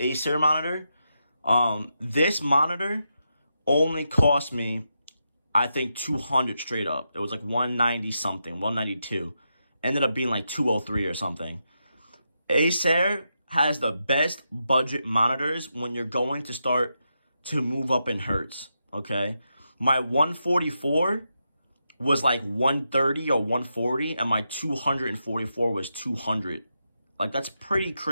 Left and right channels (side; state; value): both; inverted; correlation -0.85